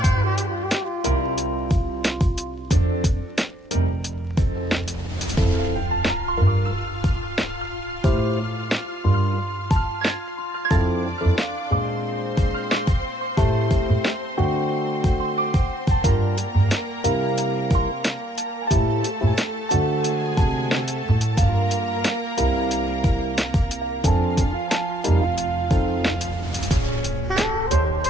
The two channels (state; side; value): normal; both; correlation 0.70